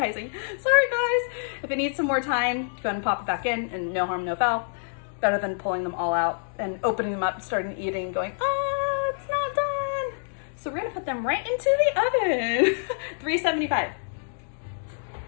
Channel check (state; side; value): silent; right; digital silence